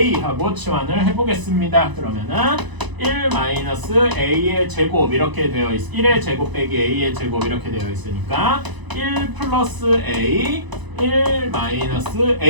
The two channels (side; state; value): left; late; 1.0 ms